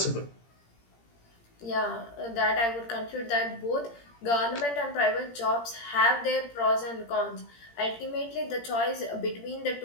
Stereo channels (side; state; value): right; late; 17 ms